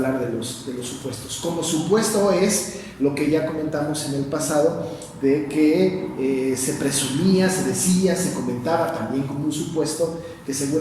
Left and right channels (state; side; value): identical; both; correlation 1.00